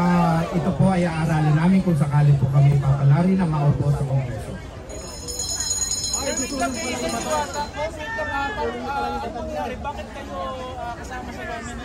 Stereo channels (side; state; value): both; identical; correlation 1.00